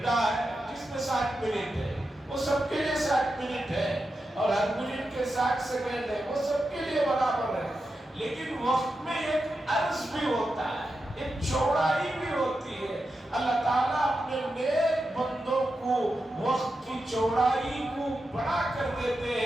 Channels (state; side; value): normal; both; correlation 0.89